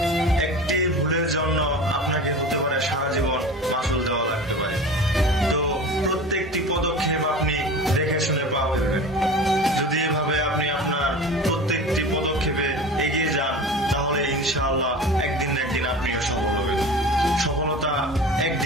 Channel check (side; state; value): both; normal; correlation 0.35